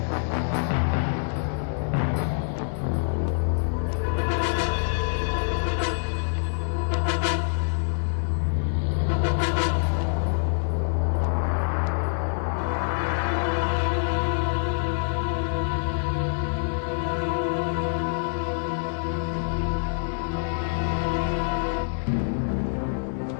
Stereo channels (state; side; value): silent; right; digital silence